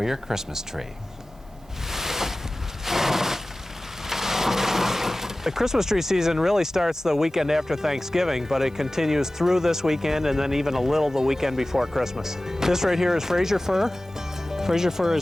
your Christmas tree. The Christmas tree season really starts the weekend after Thanksgiving, but it continues through this weekend and then even a little the weekend before Christmas. This right here is Fraser fir. Fraser fir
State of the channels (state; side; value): normal; both; correlation 0.97